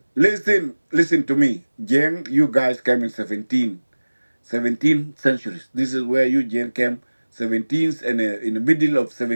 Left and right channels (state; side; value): inverted; both; correlation -1.00